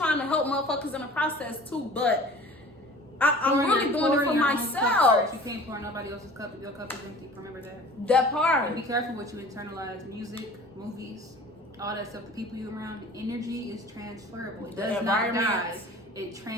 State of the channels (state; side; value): normal; both; correlation 0.44